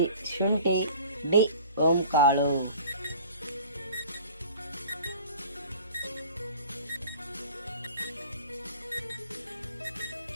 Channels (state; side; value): inverted; both; correlation -0.46